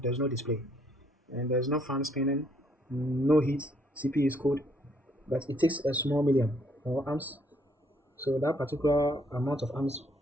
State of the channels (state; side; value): normal; both; correlation 0.68